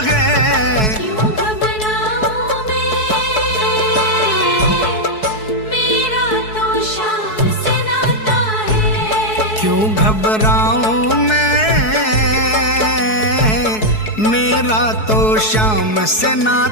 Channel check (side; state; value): right; late; 4.7 ms